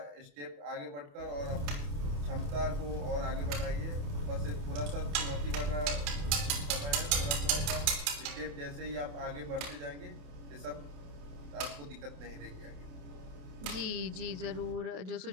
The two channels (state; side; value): late; left; 28 ms